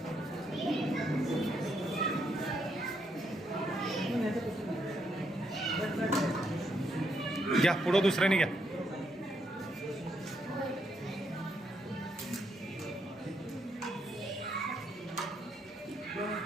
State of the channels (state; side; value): normal; both; correlation 0.76